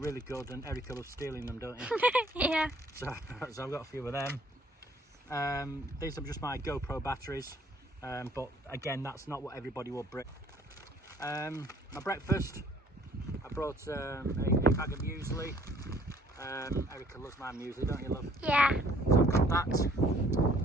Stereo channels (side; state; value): both; normal; correlation 0.58